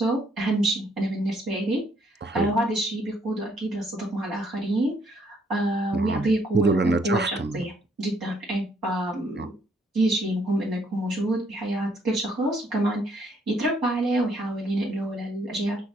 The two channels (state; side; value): normal; both; correlation 0.69